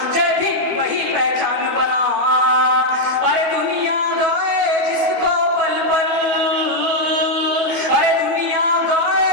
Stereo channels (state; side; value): late; left; 12 ms